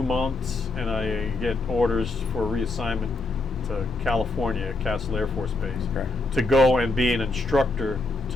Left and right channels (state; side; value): quieter; right; 3.1 dB